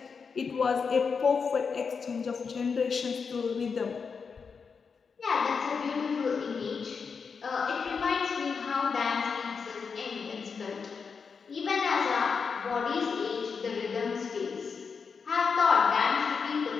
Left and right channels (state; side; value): quieter; right; 5.6 dB